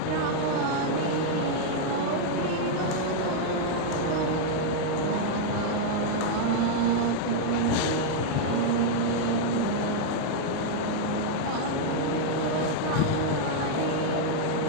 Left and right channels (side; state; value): both; different; correlation -0.01